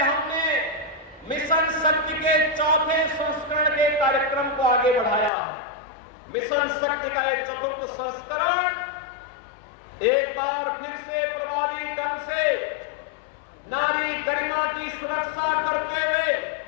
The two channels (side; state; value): right; drops out; at 5.3 s